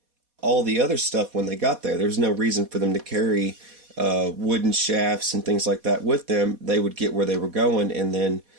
all the other stuff when they got there. There's no reason for them to carry wooden shafts and things like that with them. They would get where they were going, and then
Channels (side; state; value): left; late; 4.1 ms